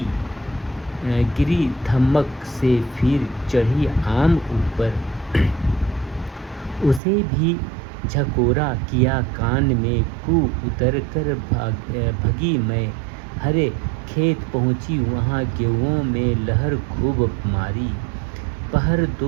धमक से फिर चढ़ी आम ऊपर, उसे भी झकोरा किया कान में, कू उतर कर भगी मैं, हरे खेत पहुँची वहाँ गेहूँ में लहर खूब मारी, पहर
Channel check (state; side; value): drops out; left; at 7.0 s